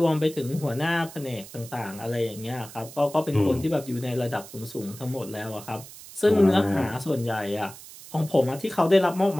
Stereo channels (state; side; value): noise; right; hiss, 16 dB below the sound